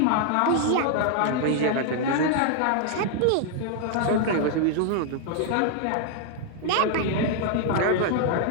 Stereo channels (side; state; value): both; different; correlation 0.00